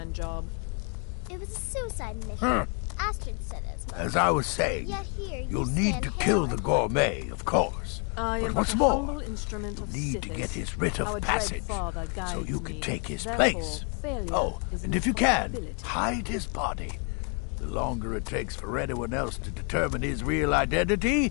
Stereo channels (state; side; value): quieter; right; 37.2 dB